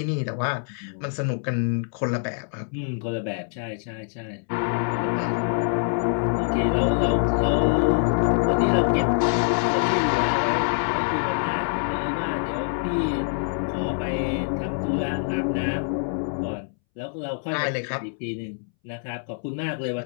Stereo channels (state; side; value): silent; right; 62 dB below the other